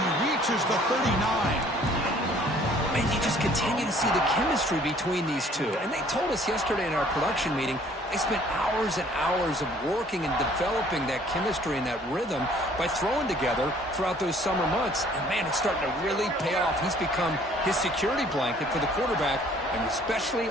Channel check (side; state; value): both; normal; correlation 0.57